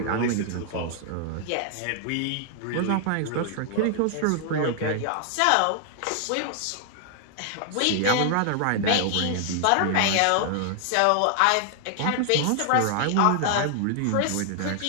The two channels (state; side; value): different; both; correlation 0.00